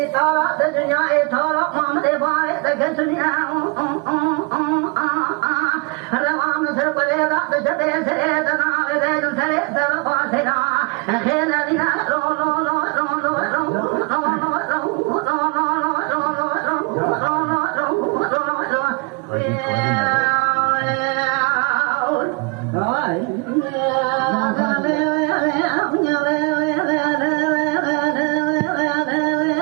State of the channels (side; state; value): left; quieter; 29.8 dB